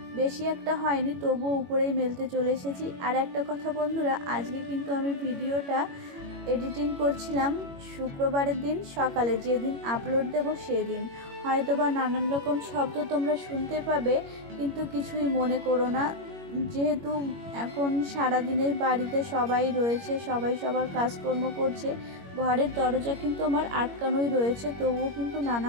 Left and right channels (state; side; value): late; left; 21 ms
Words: বেশি একটা হয়নি, তবুও উপরেই মেলতে চলে এসেছি। আর একটা কথা বন্ধুরা, আজকে কিন্তু আমি ভিডিওটা এডিটিং করছিলাম শুক্রবারের দিন সকালে, যেদিন আপলোড দেব সেদিন। হয়তোবা নানান রকম শব্দ তোমরা শুনতে পাবে, কিন্তু কিছুই মনে করো না। যেহেতু এখন সারাদিনের বাড়িতে সবাই রয়েছে, সবাই সবার কাজকর্ম করছে, ঘরের দরজা কিন্তু আমার আটকানোই রয়েছে, তবুও কিন্তু